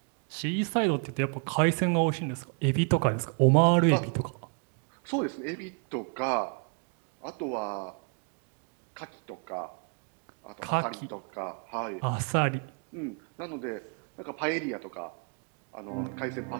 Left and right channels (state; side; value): quieter; left; 38.8 dB